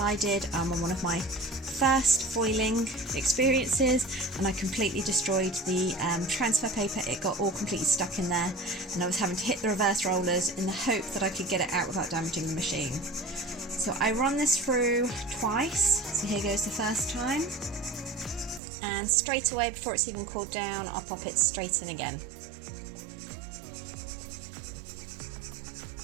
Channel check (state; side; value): drops out; left; at 18.6 s